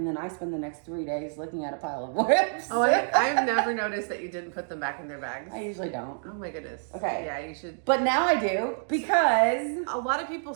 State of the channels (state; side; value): silent; left; digital silence